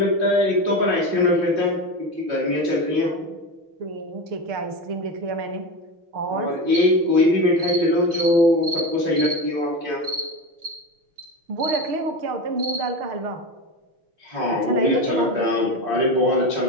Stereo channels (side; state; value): left; late; 6.5 ms